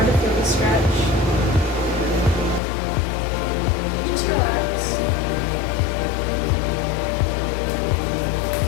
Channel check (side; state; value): right; drops out; at 2.6 s